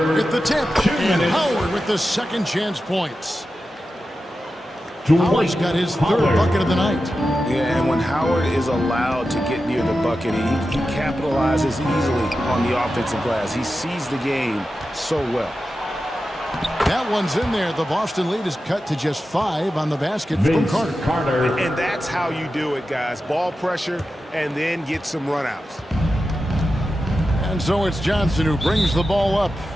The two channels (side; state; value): both; normal; correlation 0.92